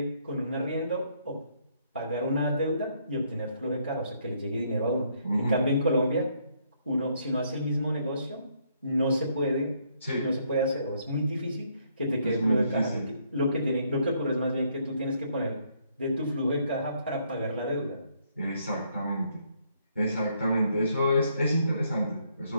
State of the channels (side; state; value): both; inverted; correlation -0.70